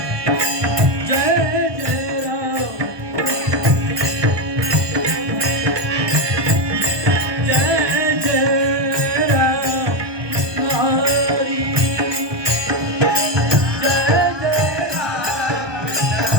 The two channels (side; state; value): left; late; 1.2 ms